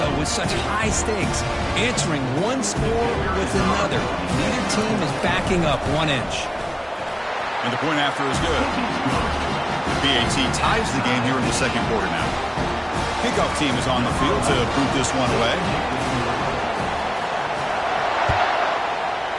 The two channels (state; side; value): identical; both; correlation 1.00